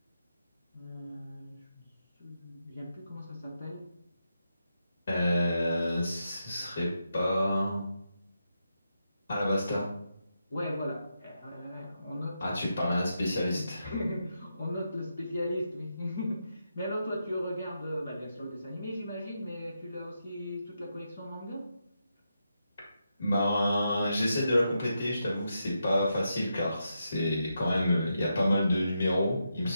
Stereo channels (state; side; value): inverted; both; correlation -0.85